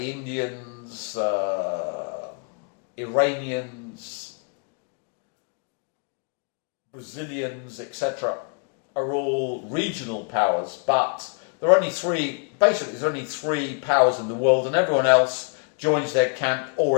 Indians, Iranians, Brazilians, etc., are all regional powers, but there are only three, basically there's only three powers in the world, and everyone else joins their camp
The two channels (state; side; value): quieter; right; 37.1 dB